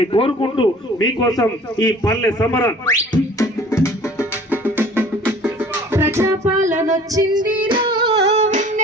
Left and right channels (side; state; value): both; normal; correlation 0.49